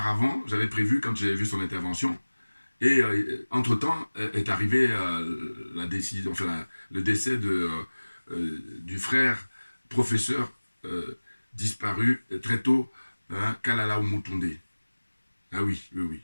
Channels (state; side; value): inverted; both; correlation -1.00